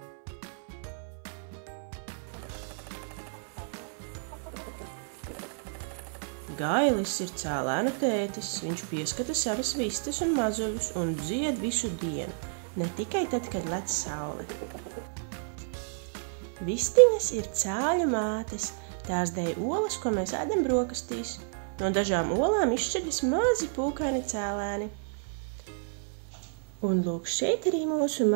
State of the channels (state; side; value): silent; left; 56 dB below the other